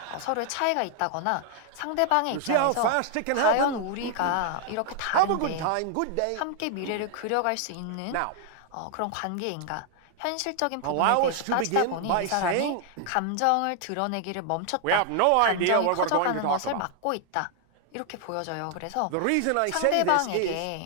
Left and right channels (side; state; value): both; different; correlation 0.00